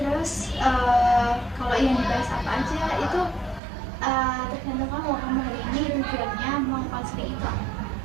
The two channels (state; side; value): drops out; left; at 3.6 s